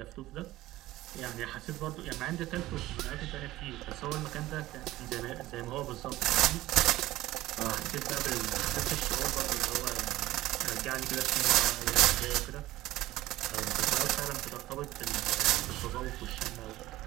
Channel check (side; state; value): left; quieter; 16.6 dB